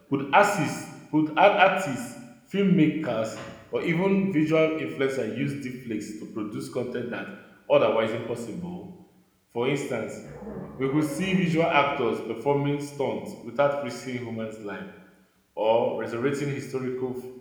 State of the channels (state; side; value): identical; both; correlation 1.00